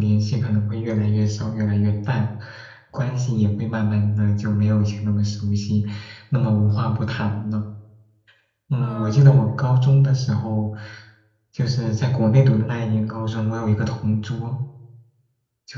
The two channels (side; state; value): both; identical; correlation 1.00